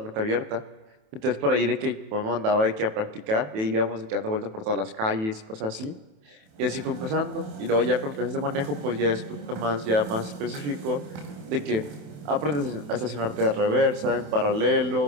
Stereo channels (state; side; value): late; left; 27 ms